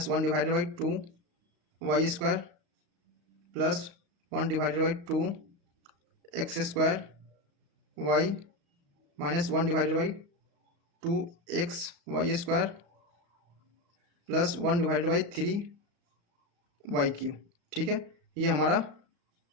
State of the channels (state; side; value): late; left; 35 ms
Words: divided by 2 y square plus 1 divided by 2 x square y -1 divided by 2 x y square plus 1 divided by 3 y cube, ठीक है। ये हमारा